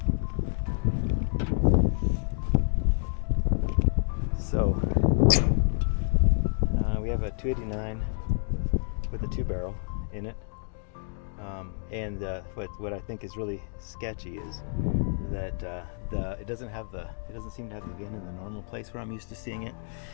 So we have a 289 with a 2-barrel in it, and what I think is really sketchy is that it doesn't seem to have the VIN in the normal place where I'm used to seeing it,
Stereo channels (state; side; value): silent; right; 56 dB below the other